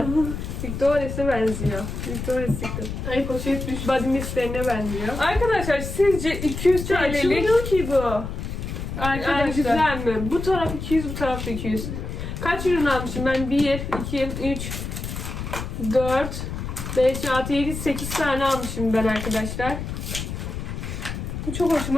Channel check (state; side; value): noise; left; rumble, 6 dB below the sound